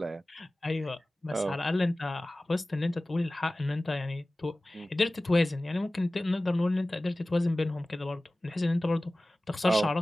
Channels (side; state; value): both; normal; correlation 0.97